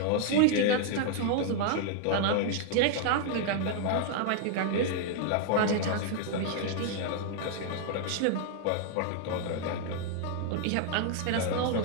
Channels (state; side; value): different; both; correlation -0.01